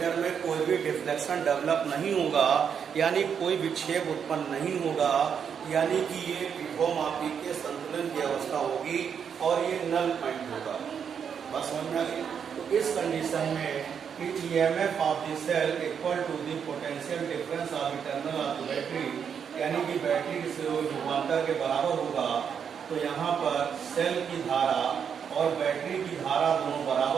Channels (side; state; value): left; quieter; 7.4 dB